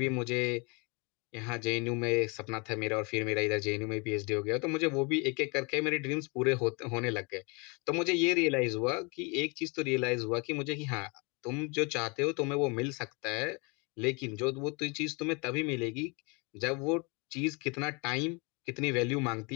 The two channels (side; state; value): right; quieter; 30.7 dB